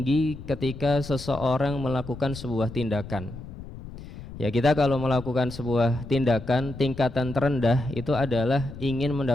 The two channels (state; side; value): noise; left; rumble, 13 dB below the sound